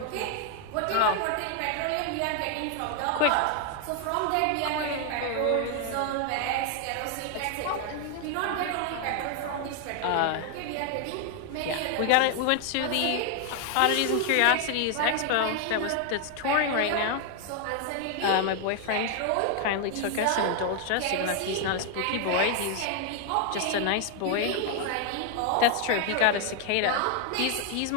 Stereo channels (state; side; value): different; both; correlation 0.00